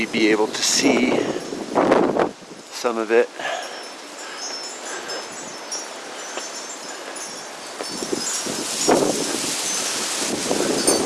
be able to see some of it.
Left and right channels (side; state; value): both; identical; correlation 1.00